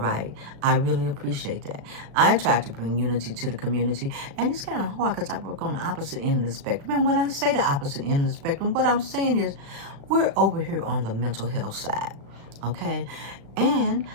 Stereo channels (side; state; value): left; late; 36 ms